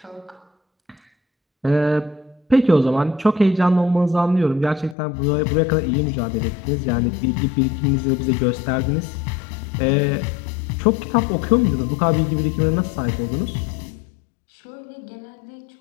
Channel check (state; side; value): drops out; right; at 5.0 s